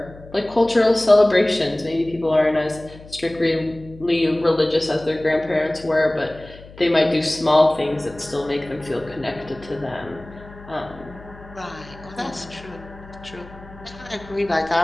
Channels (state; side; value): noise; left; hum, 19 dB below the sound